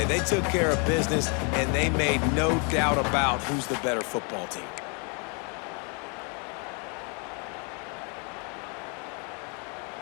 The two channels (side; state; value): right; quieter; 35.4 dB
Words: They took care of business, and they made no doubt about who's the better football team.